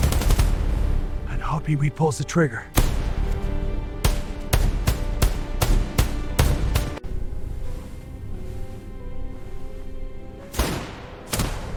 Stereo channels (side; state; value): both; identical; correlation 1.00